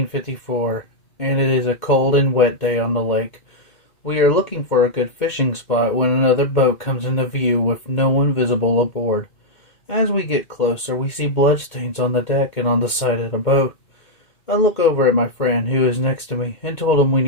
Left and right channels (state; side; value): late; right; 2.1 ms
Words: and it is a cold and wet day on the lake. We are looking for a good fishing spot when another boat comes into view with no one visible aboard. As we get closer, we see bloodstains on the deck and on the side of the boat. I look over at my friend who is next to me and told him we